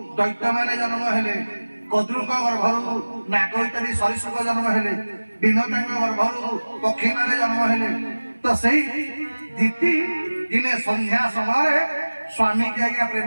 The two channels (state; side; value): inverted; both; correlation -1.00